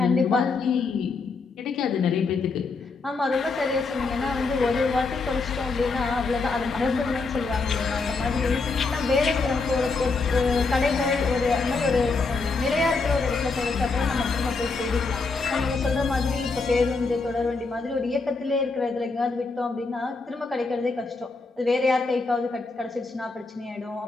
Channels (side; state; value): right; quieter; 4.1 dB